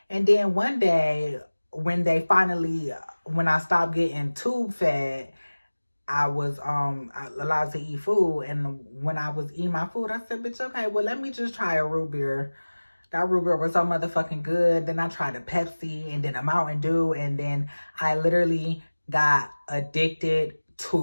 And then one day, when I stopped getting tube fed, I was allowed to eat food. And when I was eating my food, I said, bitch, okay, well, let me just try a root beer. That root beer was so motherfucking good. Then I tried a Pepsi and then a Mountain Dew. And then I literally got addicted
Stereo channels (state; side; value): inverted; both; correlation -1.00